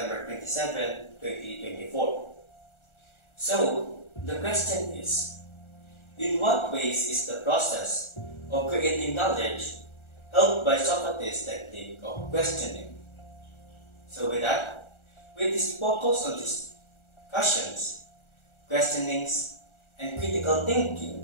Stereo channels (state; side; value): late; right; 1.4 ms